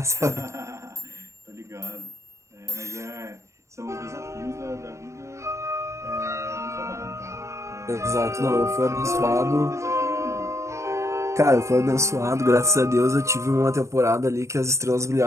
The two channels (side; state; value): left; late; 0.14 ms